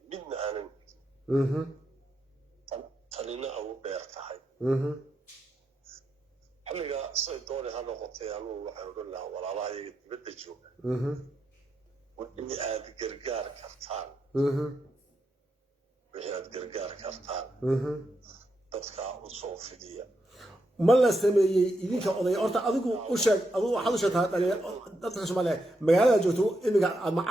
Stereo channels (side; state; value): both; normal; correlation 0.83